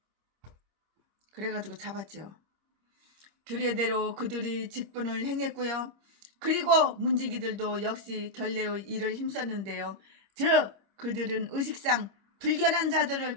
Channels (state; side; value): late; left; 25 ms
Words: 그래가지고 잡았죠. 규례대로 그들이 직분을 행했고요. 그리고 문지기들도 역시 결례의 일을 힘썼는데요. 즉 그들은 의식상 불결한 자들을